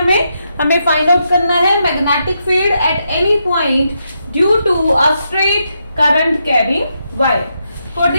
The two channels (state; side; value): inverted; both; correlation -0.82